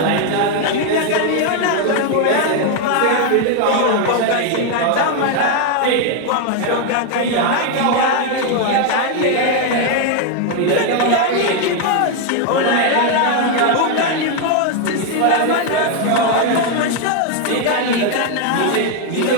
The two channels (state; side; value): different; both; correlation 0.01